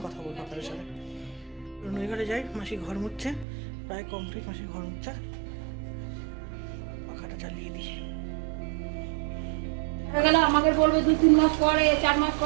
কথা বলবো আপনাদের সাথে। নই ঘরে যাই, মাসি ঘর মুছছে, প্রায় কমপ্লিট মাসি ঘর মুছছে। পাখাটা চালিয়ে দিই। গেলে আমাকে বলবে 2-3 মাস পরে, 4 মাস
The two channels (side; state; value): left; drops out; at 3.5 s